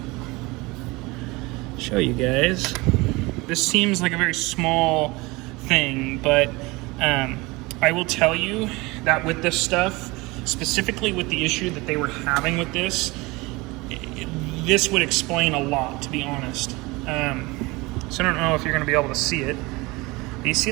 show you guys. This seems like a very small thing, but I will tell you that with this stuff, specifically with the issue that they were having with this, this would explain a lot, to be honest. So I don't know if you're going to be able to see it. Do you see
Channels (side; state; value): left; quieter; 23.4 dB